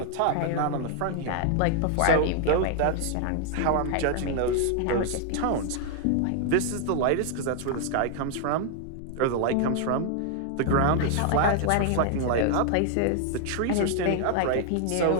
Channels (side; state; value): both; different; correlation 0.00